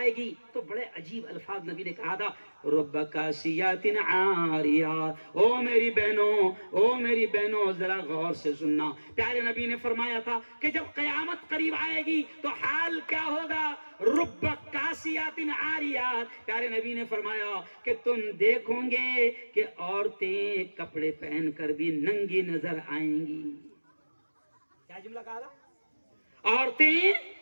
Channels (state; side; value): inverted; both; correlation -1.00